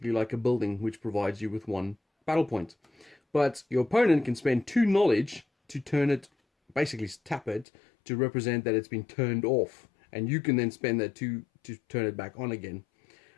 like a building, which provides you with 1 battle point. But your opponent can spend 2 knowledge to turn it, basically tap it, to represent that it's been turned off. And you can then spend that 2 to turn it back on again.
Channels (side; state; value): right; drops out; at 7.7 s